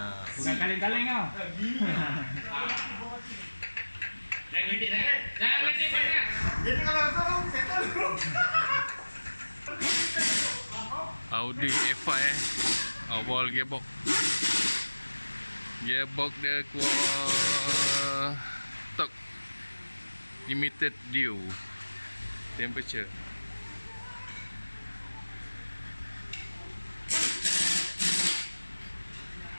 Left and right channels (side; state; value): both; inverted; correlation -1.00